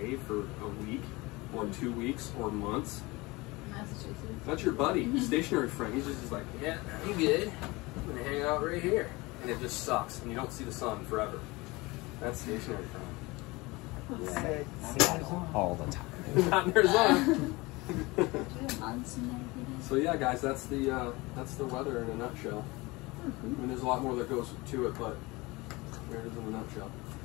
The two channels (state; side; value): quieter; right; 23.1 dB